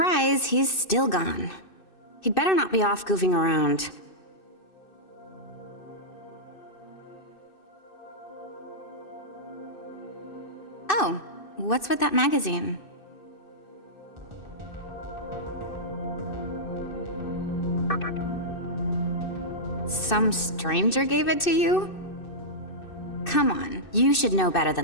he's still gone. He'd better not be off goofing around. Oh, what's with that magazine? Some stranger gave it to you? Come on, you should know better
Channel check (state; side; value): late; right; 2.6 ms